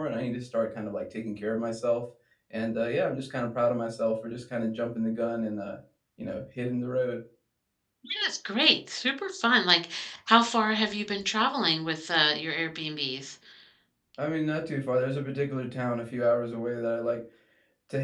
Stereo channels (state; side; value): identical; both; correlation 1.00